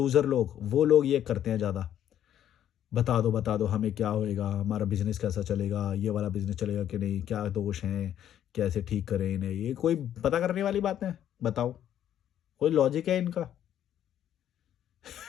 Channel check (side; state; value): right; quieter; 10.7 dB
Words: लोग, वो लोग ये करते हैं ज़्यादा, बता दो हमें क्या होएगा, हमारा बिजनेस कैसा चलेगा, ये वाला बिजनेस चलेगा कि नहीं, क्या दोष हैं, कैसे ठीक करें इन्हें, ये कोई पता करने वाली बात है? बताओ, कोई लॉजिक है इनका?